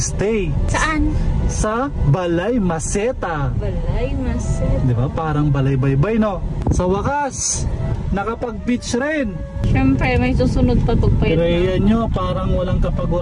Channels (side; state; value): both; identical; correlation 1.00